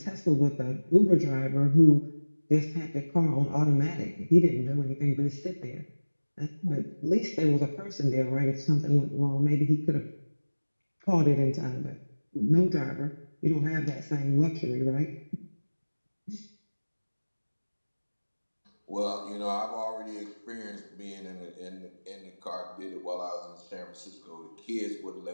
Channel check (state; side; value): inverted; both; correlation -1.00